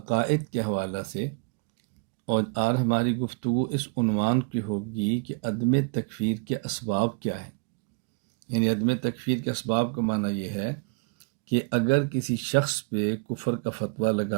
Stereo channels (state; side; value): quieter; left; 31.9 dB